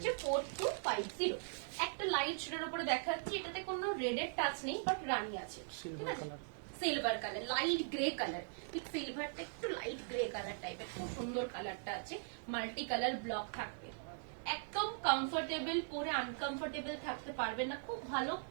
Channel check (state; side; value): silent; left; digital silence